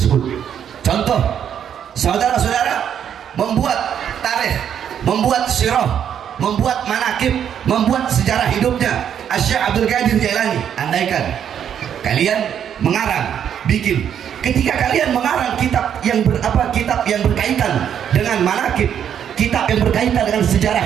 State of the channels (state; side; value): quieter; left; 8.9 dB